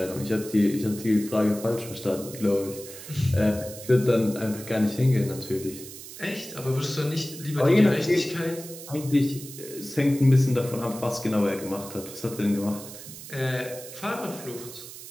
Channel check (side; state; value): right; noise; hiss, 13 dB below the sound